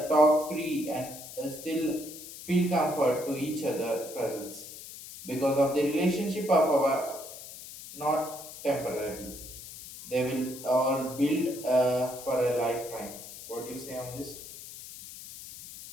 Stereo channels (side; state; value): left; noise; hiss, 13 dB below the sound